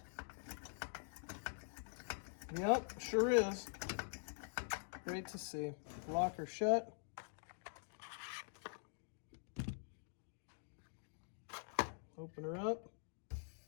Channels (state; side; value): silent; right; digital silence